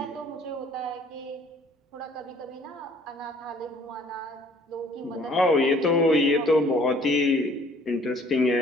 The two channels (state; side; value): normal; both; correlation 0.57